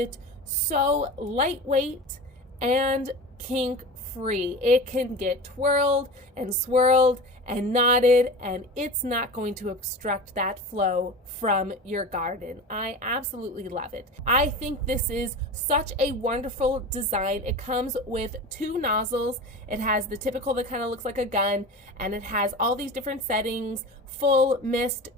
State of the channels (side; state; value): both; normal; correlation 0.31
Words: so lightweight and kink free. It can get twirled and swirled and knotted, and it's not going to obstruct that flow from your garden. I absolutely love it. I think this is such a wonderful design. It comes with 2 nozzles. It has the typical that kind of looks like a gun, and it has all these different settings: full, mist,